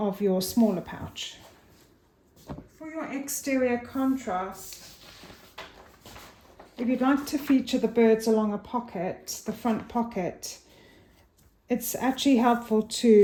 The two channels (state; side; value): identical; both; correlation 1.00